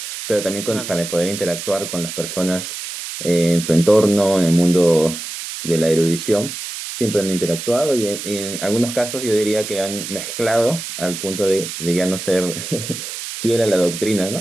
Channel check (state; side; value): noise; right; hiss, 8 dB below the sound